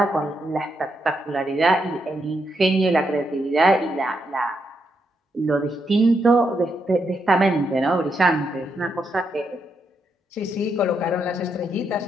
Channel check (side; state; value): both; normal; correlation 0.80